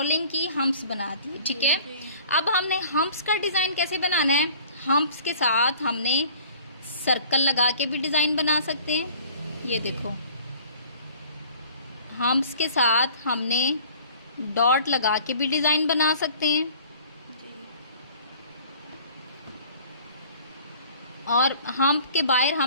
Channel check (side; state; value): both; inverted; correlation -0.50